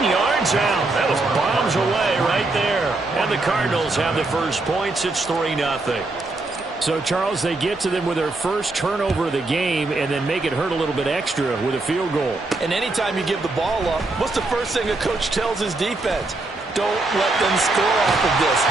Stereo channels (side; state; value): left; quieter; 3.1 dB